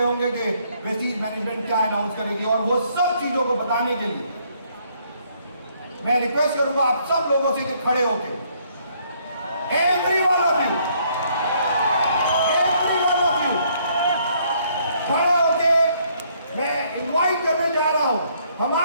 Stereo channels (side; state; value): both; inverted; correlation -0.67